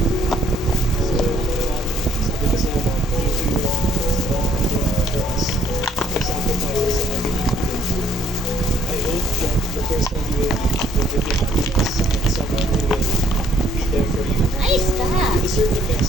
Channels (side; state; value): both; normal; correlation 0.65